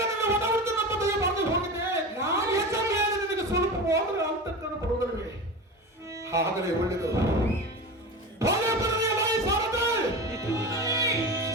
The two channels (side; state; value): both; normal; correlation 0.27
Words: ನನ್ನ ಒಡಹುಟ್ಟು ನಮ್ಮ ದಯ ಬಂದು ಹೋಗಿದೆ ನಾನು ಹೆಚ್ಚು ಮೇಲೆ ನಿನಗೆ ಸ್ವಲ್ಪ ಹೋದರೆ ಅಂತಕ್ಕನ್ನು ಬರುವುದಿಲ್ಲವೇ ಹಾಗಲೇ ಒಳ್ಳೆಯದು ಒಳ್ಳೆ ಬರಲಿ ಬಾಯಿ ಸಾರದೆ